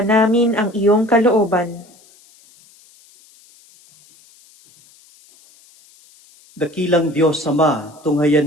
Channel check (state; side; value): noise; left; hiss, 29 dB below the sound